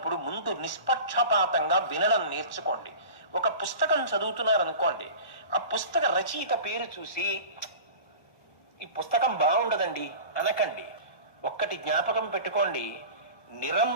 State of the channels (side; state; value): right; late; 1.2 ms